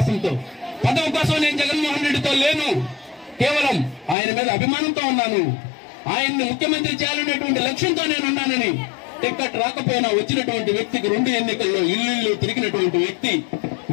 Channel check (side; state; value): right; drops out; at 4.2 s